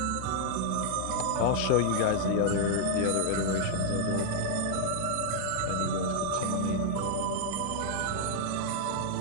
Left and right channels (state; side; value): different; both; correlation -0.01